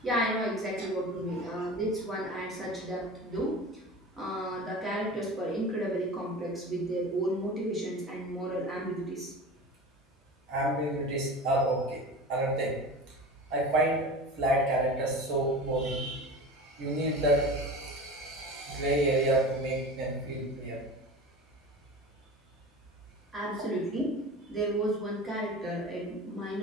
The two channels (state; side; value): normal; both; correlation 0.34